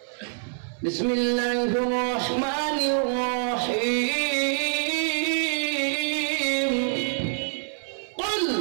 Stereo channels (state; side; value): silent; left; 60 dB below the other